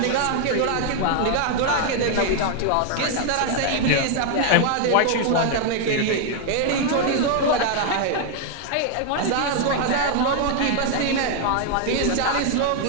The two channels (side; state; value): both; different; correlation 0.00